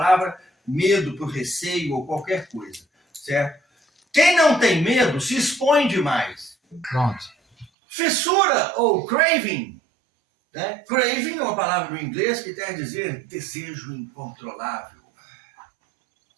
medo por receio ou qualquer coisa, certo? Quem não tem medo se expõe demais. Pronto. Fissura ou craving, né? Craving é uma palavra do inglês que quer dizer desejo incontrolável.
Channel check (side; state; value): left; drops out; at 7.7 s